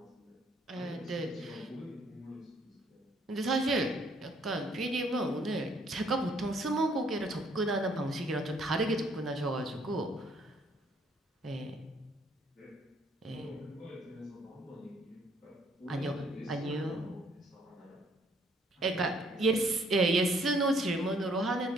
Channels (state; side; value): normal; both; correlation 0.65